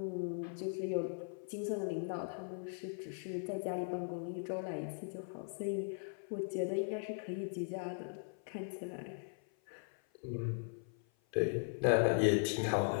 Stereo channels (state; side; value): silent; right; 52 dB below the other